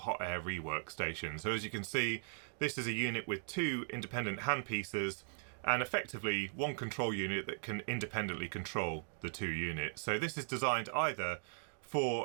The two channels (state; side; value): silent; left; 52 dB below the other